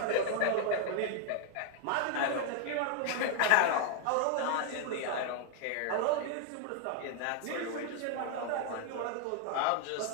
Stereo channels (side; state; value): both; different; correlation 0.00